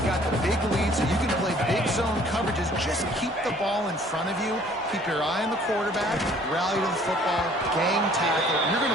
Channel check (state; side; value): normal; both; correlation 0.56